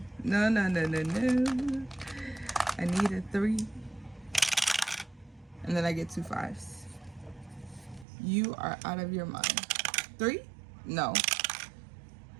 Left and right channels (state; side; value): drops out; left; at 8.1 s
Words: I need a 3. And then I get 2 5s. You are out of your mind. 3? No.